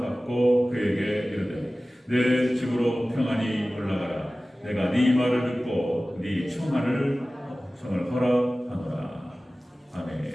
그에게 이르되 내 집으로 평안히 올라가라. 내가 네 말을 듣고 네 청을 허락하노라. 아멘.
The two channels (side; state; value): both; normal; correlation 0.97